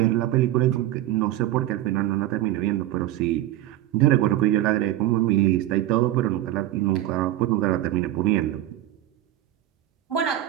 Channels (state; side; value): quieter; left; 14.0 dB